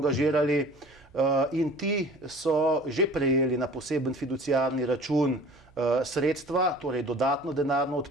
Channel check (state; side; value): noise; right; hum, 29 dB below the sound